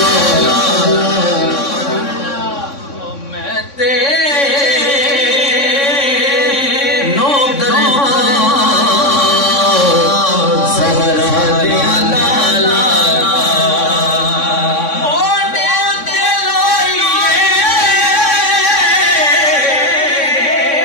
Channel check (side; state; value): right; late; 3.6 ms